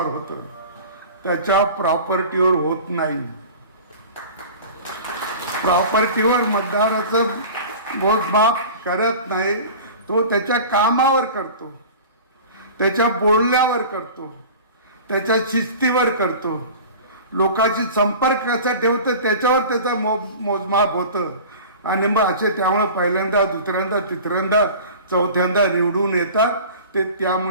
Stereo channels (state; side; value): inverted; both; correlation -0.39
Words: होतं, त्याच्या प्रॉपर्टीवर होत नाही. प्रॉपर्टीवर मतदाराचं मोजमाप करत नाही, तो त्याच्या कामावर करतो, त्याच्या बोलण्यावर करतो, त्याच्या शिस्तीवर करतो, लोकांशी संपर्क कसा ठेवतो त्याच्यावर त्याचं मोजमाप होतं. आणि मग असे त्यामुळे पहिल्यांदा, दुसऱ्यांदा, तिसऱ्यांदा, चौथ्यांदा निवडून येतात. ते